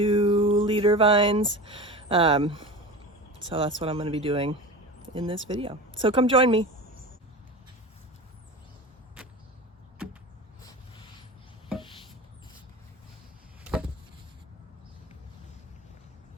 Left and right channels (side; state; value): both; normal; correlation 0.30